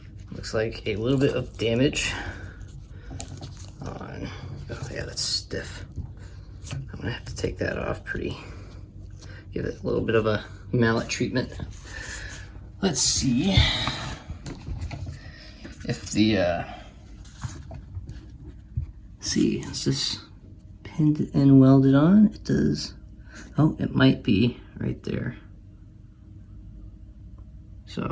Looks like a little bit of damage on, oh yeah, that's stiff. I'm gonna have to take that off give it a little bit of a mallet treatment. Let's see if the, is this pinned and welded on? It does. Oh, it might be right there.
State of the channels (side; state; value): both; identical; correlation 1.00